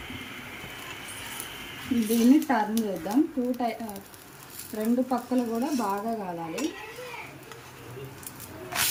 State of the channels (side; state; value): both; identical; correlation 1.00